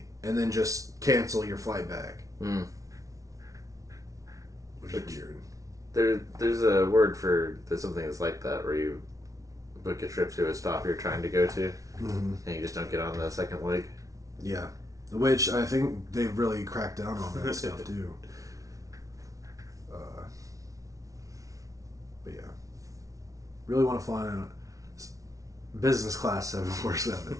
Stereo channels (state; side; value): late; left; 0.17 ms